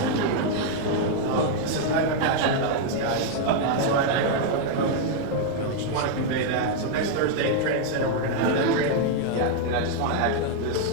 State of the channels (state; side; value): different; both; correlation 0.00